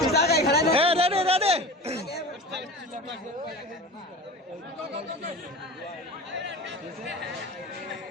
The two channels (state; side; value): normal; both; correlation 0.34